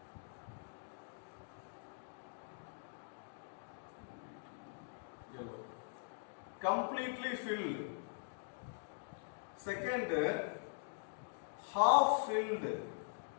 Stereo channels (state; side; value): silent; right; digital silence